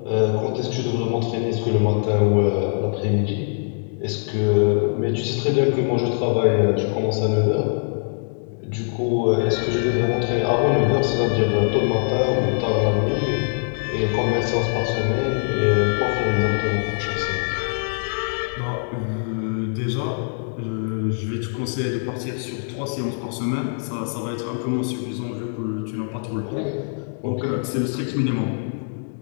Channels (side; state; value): right; silent; digital silence